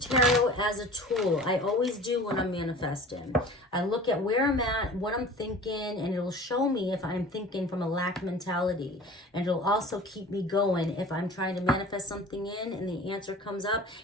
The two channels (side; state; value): both; normal; correlation 0.42